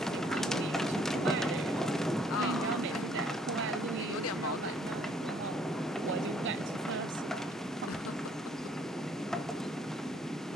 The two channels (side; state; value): both; normal; correlation 0.63